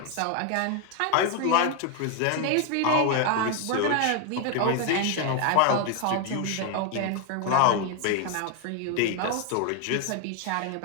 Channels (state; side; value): different; both; correlation 0.01